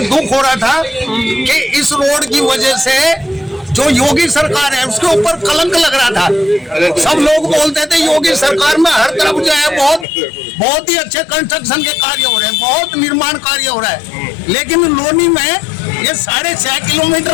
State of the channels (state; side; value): drops out; right; at 10.1 s